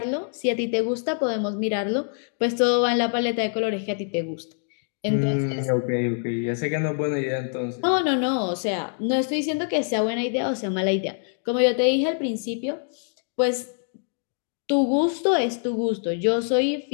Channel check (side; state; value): right; silent; 60 dB below the other